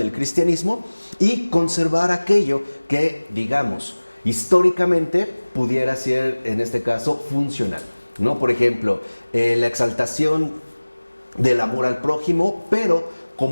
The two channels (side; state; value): both; inverted; correlation -1.00